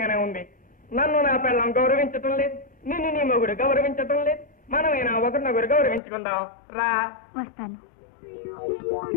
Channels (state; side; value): drops out; right; at 6.0 s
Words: ఉంది. నన్ను నా పిల్లం గౌరవించటం లేదు, నిన్ను నీ మొగుడు గౌరవించటం లేదు. మనమైనా ఒకరినొకరు గౌరవించుకుందాం. రా, వస్తాను.